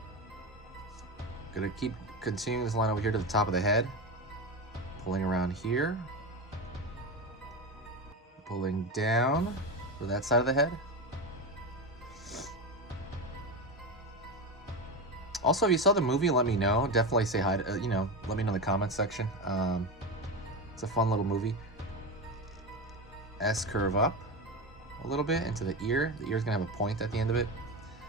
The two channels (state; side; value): normal; both; correlation 0.19